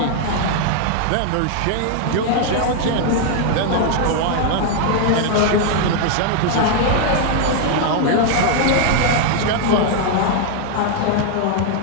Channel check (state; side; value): different; both; correlation 0.00